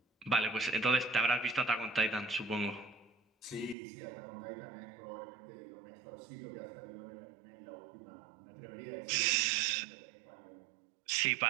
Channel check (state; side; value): drops out; left; at 3.8 s